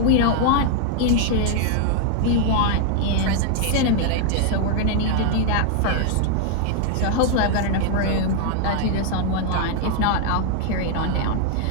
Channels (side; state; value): both; different; correlation 0.00